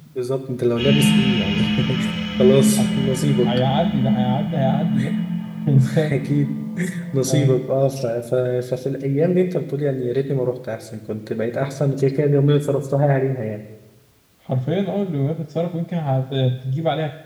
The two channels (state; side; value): identical; both; correlation 1.00